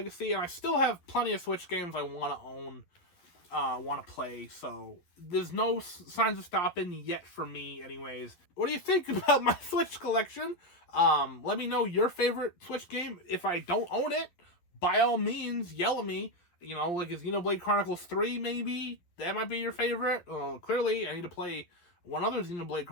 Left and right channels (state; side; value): late; right; 11 ms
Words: And I still have plenty of Switch games I want to own, want to play, so there's no signs of stopping yet for me anyways. What do you think about my Switch collection? Let me know your favorite Switch game. If I don't own it, by all means, yell at me. You know, like, is Xenoblade Chronicles 3 maybe? That might be your favorite. Well, clearly, I need to play one other Xenoblade